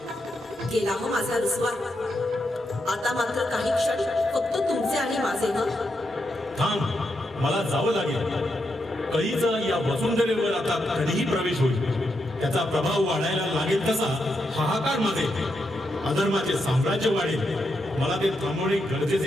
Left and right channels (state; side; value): normal; both; correlation 0.83